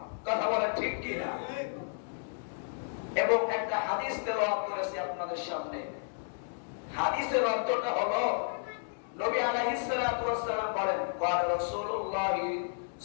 কথা বলেন ঠিক কি না? এবং একটা হাদিস তেলাওয়াত করেছি আপনাদের সামনে। হাদিসের অর্থটা হলো, নবী আলাইহিস সালাতু ওয়াস সালাম বলেন, ক্বাল রাসূলুল্লাহ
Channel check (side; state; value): right; silent; digital silence